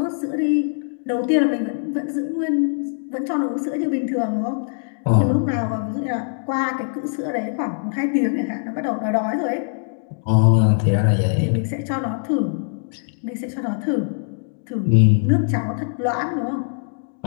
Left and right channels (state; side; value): silent; right; digital silence